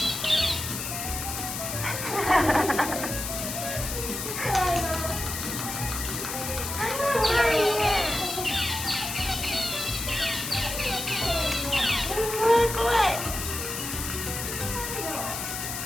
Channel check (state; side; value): noise; left; hiss, 5 dB below the sound